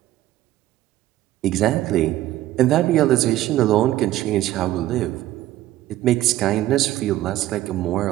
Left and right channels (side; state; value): left; quieter; 14.5 dB